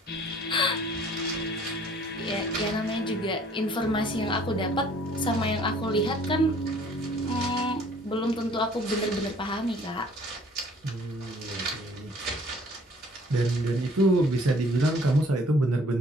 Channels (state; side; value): normal; both; correlation 0.56